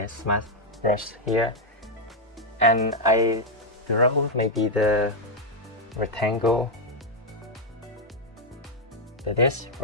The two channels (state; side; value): normal; both; correlation 0.00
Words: mask brush here, and I draw maybe the rectangle like this,